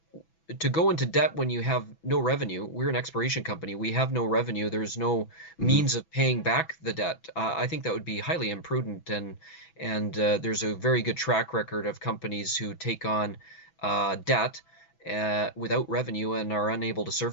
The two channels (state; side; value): late; right; 6.1 ms